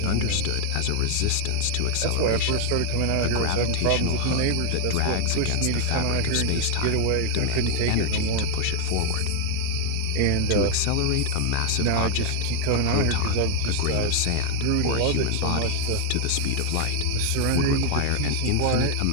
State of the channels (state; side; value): different; both; correlation 0.00